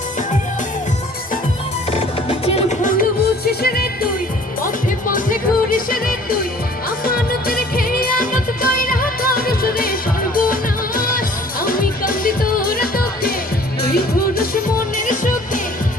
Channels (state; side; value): normal; both; correlation 0.51